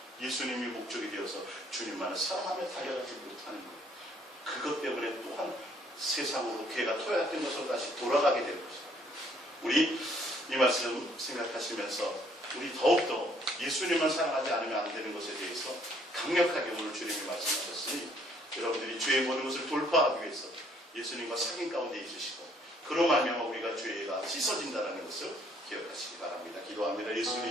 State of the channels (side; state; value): both; normal; correlation 0.64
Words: 예수님이 목적이 되어서 주님만을 사랑하며 달려가지 못하는 거예요. 그것 때문에 또한 세상으로 개가 토약된 것으로 다시 돌아가게 되는 것입니다. 우리 이 말씀 생각하시면서 우리 더욱더 예수님만 사랑하지 않으면 안 되는 것에 대해서 강력하게 오늘 주님이 말씀하셨으니 여러분들이 죄의 모든 것을 돌파하기 위해서 예수님과 사귐 가운데 있으시고 그로 말미암아 우리가 죄가 씻어진다는 것을 기억하시기 바랍니다. 기도합니다.